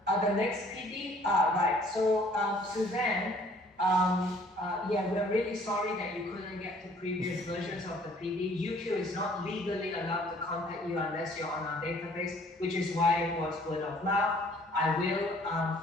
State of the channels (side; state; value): both; normal; correlation 0.57